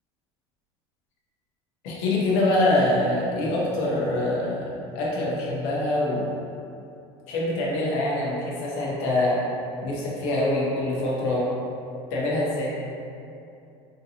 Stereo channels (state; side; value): normal; both; correlation 0.43